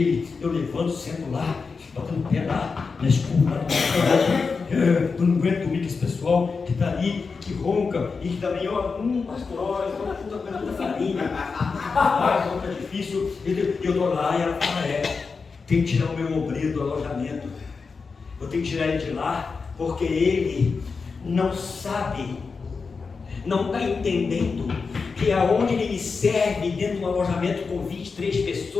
eu levanto, sento lá, fico batendo o pé lá, na escura, lá eu não aguento dormir com esse pessoal que está ali, que ronca, e que também, ó, pastor, olha, puta coisa da farinha, ronca difícil, e eu estou lá, e ela fala, tem que tirar o meu obreiro do alojamento, eu tenho que tirar ele de lá, porque ele não sabe, não está entendendo que aonde ele me serve dentro de um alojamento com 23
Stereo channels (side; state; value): right; quieter; 4.8 dB